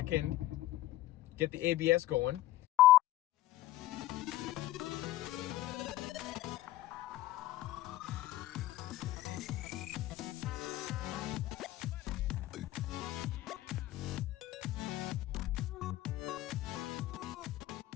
get the ABS going.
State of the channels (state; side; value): quieter; right; 15.6 dB